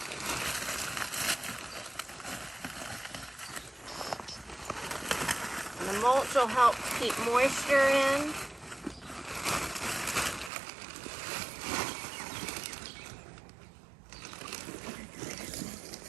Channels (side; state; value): left; drops out; at 10.5 s